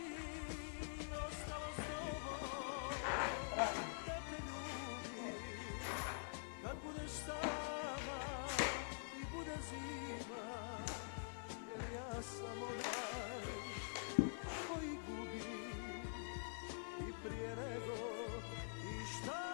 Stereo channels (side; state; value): right; silent; digital silence